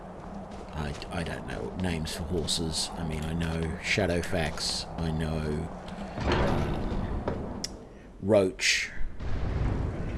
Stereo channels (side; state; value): both; identical; correlation 1.00